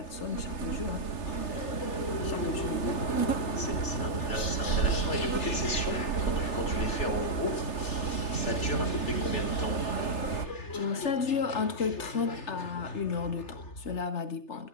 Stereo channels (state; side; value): late; right; 3.3 ms